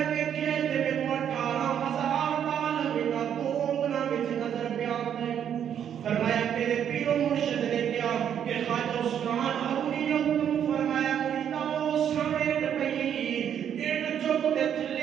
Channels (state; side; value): quieter; left; 9.0 dB